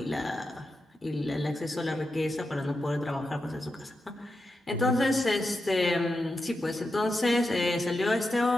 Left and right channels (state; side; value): normal; both; correlation 0.89